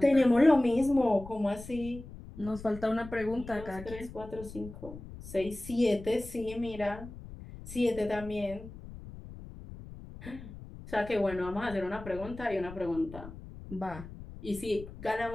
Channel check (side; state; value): left; noise; rumble, 14 dB below the sound